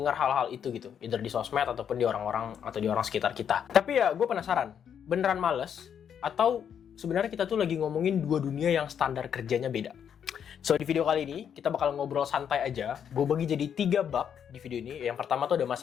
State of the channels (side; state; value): right; quieter; 8.3 dB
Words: hal-hal itu gitu. Either di sosmed ataupun di orang-orang atau di orang sekitar kita. Tapi ya gue penasaran, beneran males? Atau sebenarnya kita tuh lagi ngomongin dua dunia yang standar kerjanya beda? So, di video kali ini, kita bakal ngobrol santai aja. Gue bagi jadi 3 bab di video ini. Yang pertama tuh ada